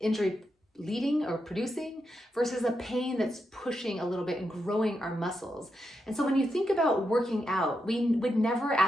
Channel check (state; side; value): normal; both; correlation 0.85